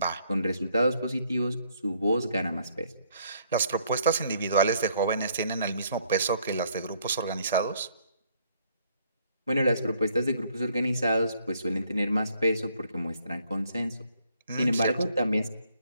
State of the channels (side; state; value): both; inverted; correlation -0.67